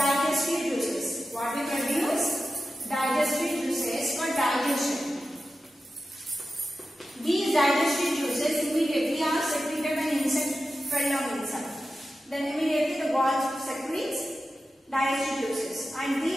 juices. What we produce? Digestive juices for digestion. These digestive juices immediately are secreted when insect fell down inside. Then immediately the walls secretes digestive juices, and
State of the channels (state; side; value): normal; both; correlation 0.92